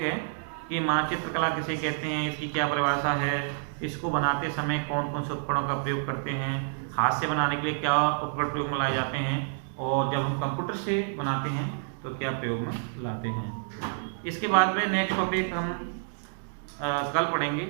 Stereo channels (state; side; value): silent; left; digital silence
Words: है कि मानचित्र कला किसे कहते हैं, इसकी क्या परिभाषा है, इसको बनाते समय कौन कौन से उपकरणों का प्रयोग करते हैं, हाथ से बनाने के लिए क्या उपकरण प्रयोग में लाए जाते हैं, और जब हम कंप्यूटर से बनाते हैं तो क्या प्रयोग में लाते हैं। इसके बाद में नेक्स्ट टॉपिक हम कल पढ़ेंगे।